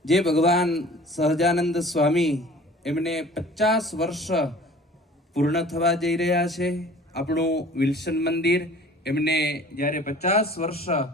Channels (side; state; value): both; normal; correlation 0.47